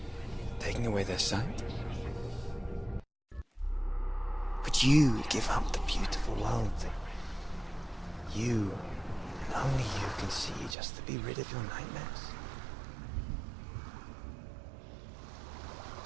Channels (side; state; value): left; drops out; at 10.8 s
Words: taking away their sight? Would you give up the beautiful world that you, and only you, can see just to be rid of your nightmares?